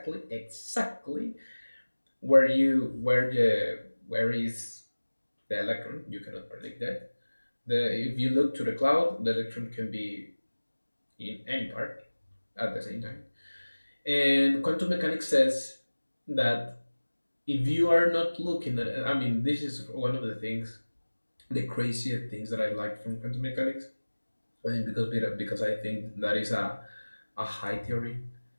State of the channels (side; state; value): both; inverted; correlation -1.00